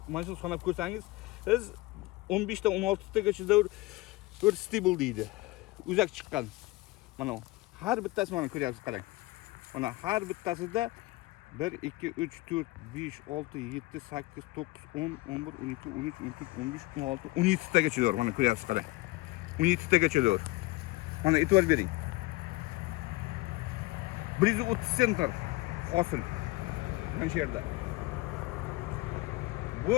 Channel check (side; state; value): right; quieter; 21.2 dB